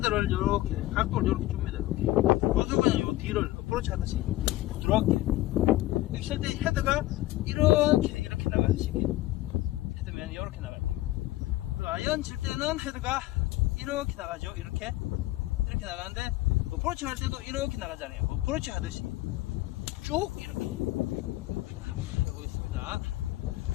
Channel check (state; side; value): quieter; right; 17.0 dB